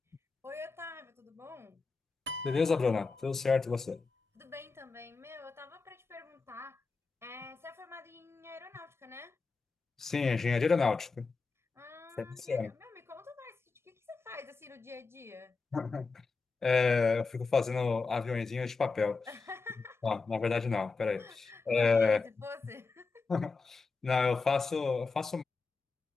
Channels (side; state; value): right; quieter; 4.3 dB